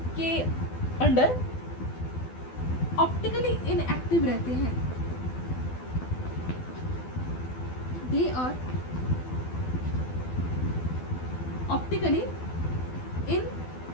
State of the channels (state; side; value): late; right; 12 ms